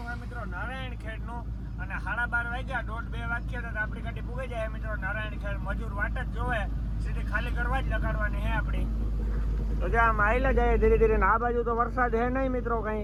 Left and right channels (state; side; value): identical; both; correlation 1.00